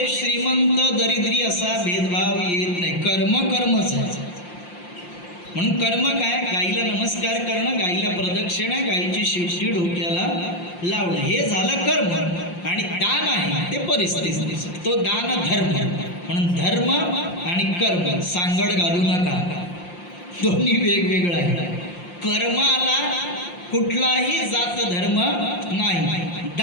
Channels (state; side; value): late; right; 5.7 ms